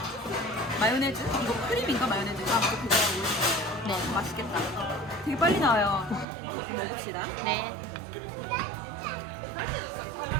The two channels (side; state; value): left; drops out; at 6.2 s